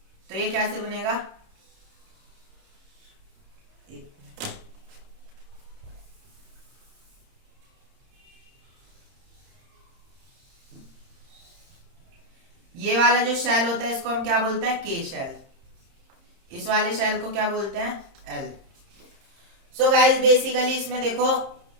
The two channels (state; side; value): late; left; 30 ms